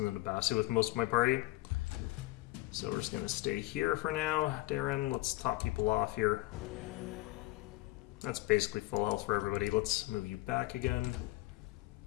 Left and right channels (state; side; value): quieter; right; 19.4 dB